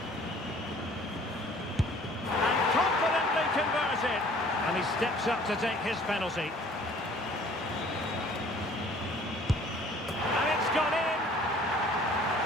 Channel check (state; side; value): normal; both; correlation 0.53